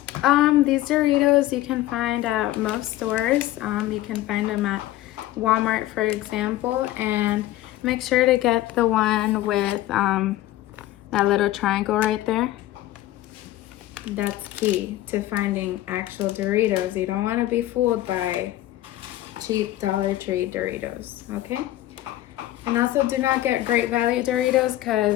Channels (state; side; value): quieter; right; 15.2 dB